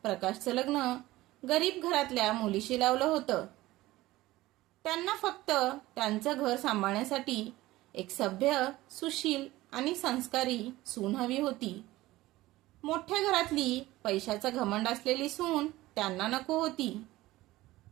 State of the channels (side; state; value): left; quieter; 17.7 dB